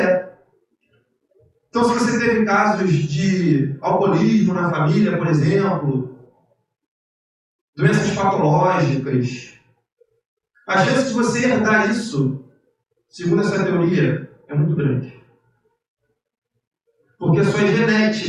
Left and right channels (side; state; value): both; identical; correlation 1.00